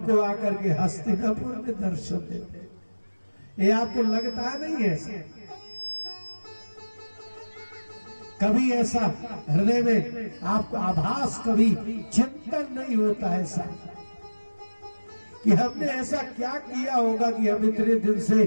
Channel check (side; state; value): both; inverted; correlation -1.00